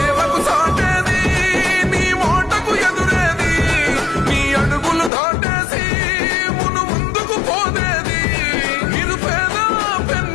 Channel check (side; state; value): right; drops out; at 5.1 s